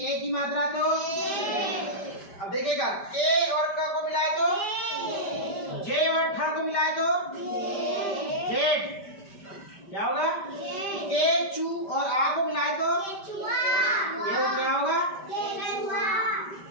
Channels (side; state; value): right; late; 5.1 ms